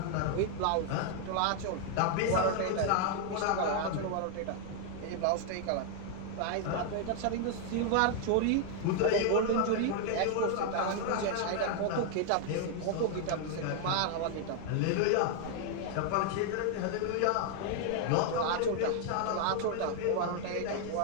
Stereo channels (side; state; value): both; different; correlation 0.00